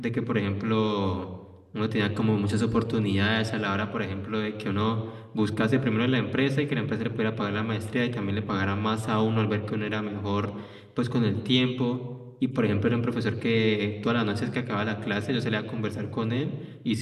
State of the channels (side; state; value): both; identical; correlation 1.00